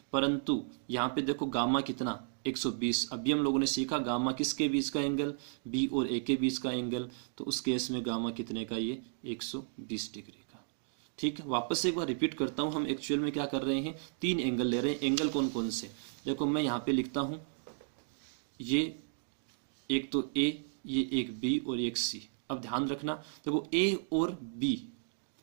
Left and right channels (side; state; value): left; silent; digital silence